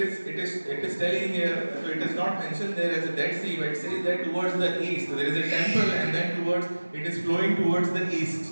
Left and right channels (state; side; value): inverted; both; correlation -1.00